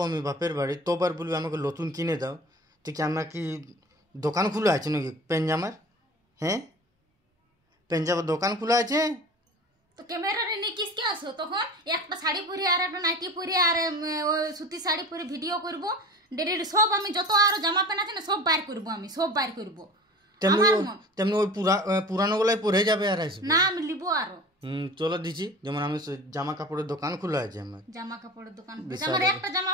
আমি বাপের বাড়ি, তোবার বলবে আমাকে নতুন কিনে দাও। তো কি আমার কি দোকান খোলা আছে নাকি প্যান্ট জামার? হ্যাঁ প্যান্ট জামার দোকান খোলা আছে? তো ক্যামেরারে নিয়ে কিসকে আসো তখন? একটা শাড়ি পরে আর একটা নাইটি পরে আর ওই সুতি শাড়ি পরে ভিডিও করব। ডেলি সব আমি যত আরো জামা প্যান্ট আছে না সব বাইর করব, আমি সব বাইর করব। তেমনি ওই পুরানো গুলাই পরে যাবে আর আসবে না আমি লিব আরো। চলো দিচ্ছি, যেমন আমি জামা কাপড়ের দোকান খোলা আছে আমার। জামা কাপড়ের দোকান আমার একটা জামা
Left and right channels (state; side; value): normal; both; correlation 0.38